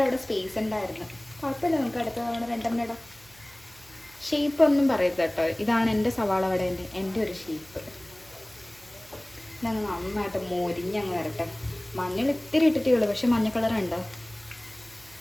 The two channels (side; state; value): right; noise; hum, 26 dB below the sound